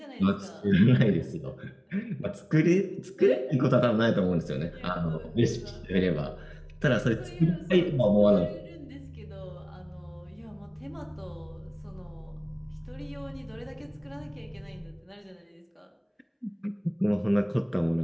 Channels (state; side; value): identical; both; correlation 1.00